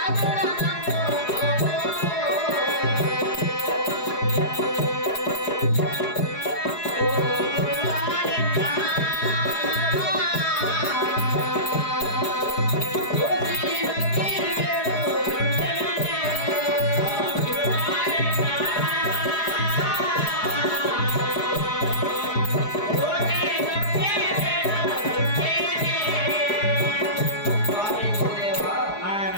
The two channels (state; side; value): late; right; 4.8 ms